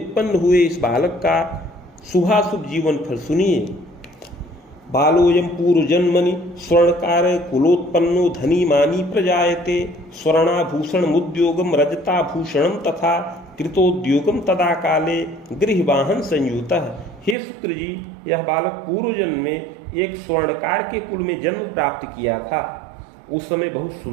हुए इस बालक का शुभाशुभ जीवन फल सुनिए। बालोयम पूर्व जन्मनि स्वर्णकार कुलोत्पन्नो धनी मानी प्रजायते स्वर्णाभूषण मुद्योगम रजताभूषणम तथा कृतोद्योगम तदा काले गृहवाहन संयुतः। हे शुक्र जी, यह बालक पूर्व जन्म में एक स्वर्णकार के कुल में जन्म प्राप्त किया था। उस समय बहुत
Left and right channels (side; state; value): left; drops out; at 17.4 s